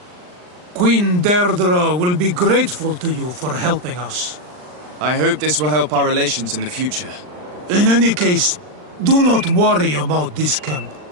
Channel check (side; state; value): left; late; 39 ms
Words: Queen Deirdre will be grateful to you for helping us. I hope this will help our relations in the future. In any case, do not worry about this camp.